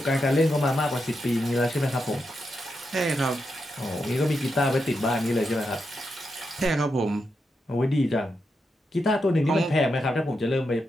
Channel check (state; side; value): normal; both; correlation 0.85